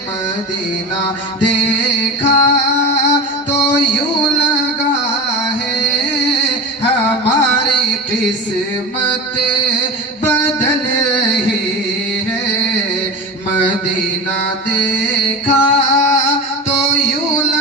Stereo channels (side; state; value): both; normal; correlation 0.28